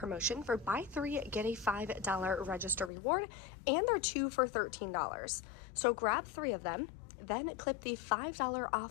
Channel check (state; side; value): drops out; right; at 2.9 s